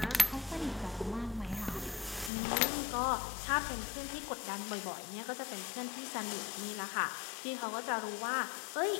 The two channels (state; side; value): drops out; right; at 2.3 s